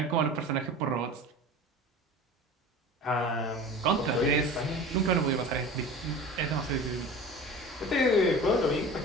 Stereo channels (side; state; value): both; normal; correlation 0.37